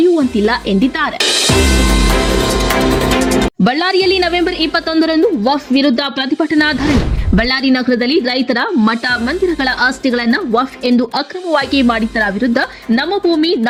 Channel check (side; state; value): both; identical; correlation 1.00